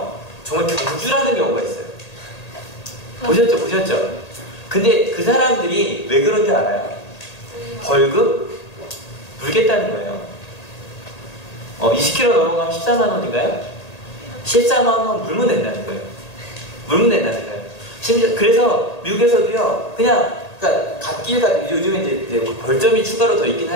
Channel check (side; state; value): right; late; 1.8 ms